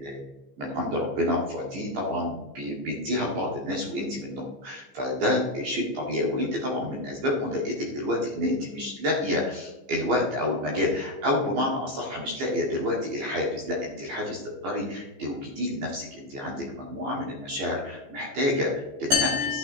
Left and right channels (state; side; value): late; left; 15 ms